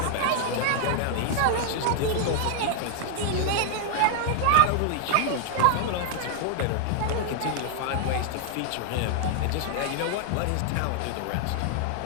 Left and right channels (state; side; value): different; both; correlation 0.00